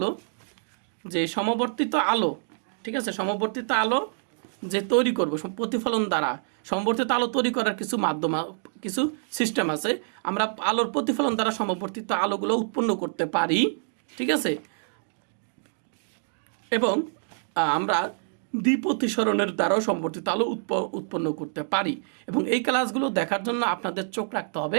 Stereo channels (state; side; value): silent; left; digital silence